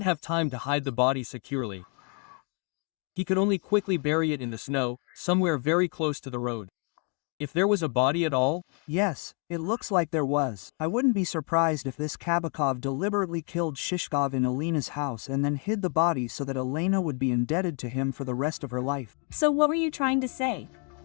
have time to hide the body securely. He could only quickly bury it in the snow, somewhere very close to the road. If there was a body at all? Yes, it looks like there was. I wouldn't be surprised if this Kabakov deliberately killed Shishkov in Elena's house and then hid the body so that Elena would be indebted to him for the rest of her life. So what were you trying to say?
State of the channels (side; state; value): right; quieter; 37.3 dB